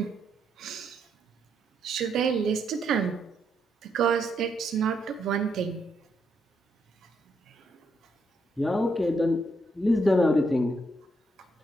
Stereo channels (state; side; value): normal; both; correlation 0.77